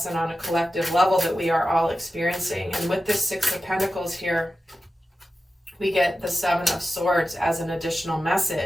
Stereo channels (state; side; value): normal; both; correlation 0.93